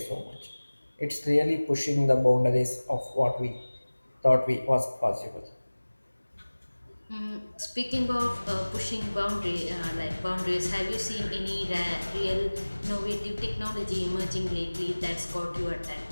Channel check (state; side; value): inverted; both; correlation -1.00